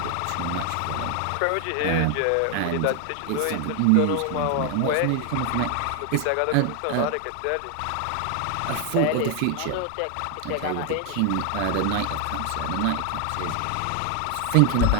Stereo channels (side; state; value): both; different; correlation 0.01